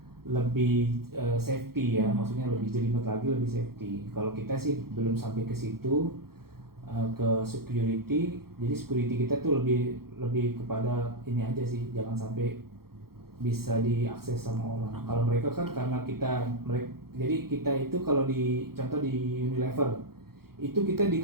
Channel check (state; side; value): late; left; 0.94 ms